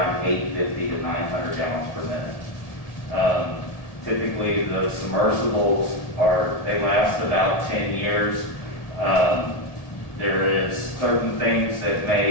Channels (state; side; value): late; right; 1.8 ms